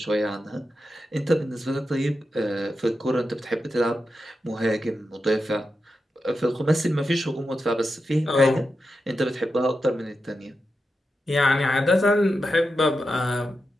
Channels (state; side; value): normal; both; correlation 0.89